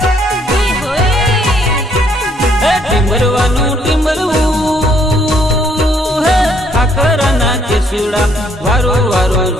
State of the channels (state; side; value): normal; both; correlation 0.67